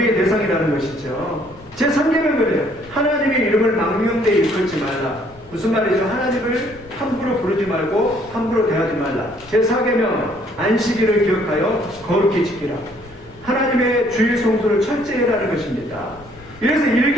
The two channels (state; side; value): noise; left; rumble, 23 dB below the sound